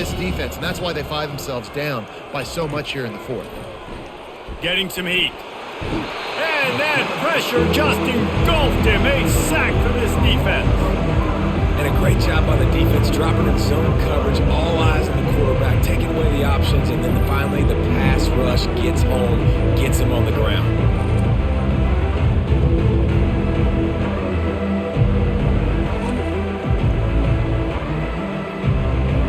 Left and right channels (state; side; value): identical; both; correlation 1.00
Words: defense, and that's why they find themselves down by so much here in the 4th. Getting some heat. And that pressure just engulfed him. A sack for this defense. And a great job by the defense, dropping in zone coverage, all eyes on the quarterback, taking away the options, and then finally the pass rush gets home, gets him on the ground.